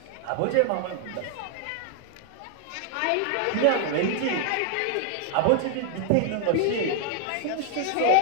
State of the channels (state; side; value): different; both; correlation 0.00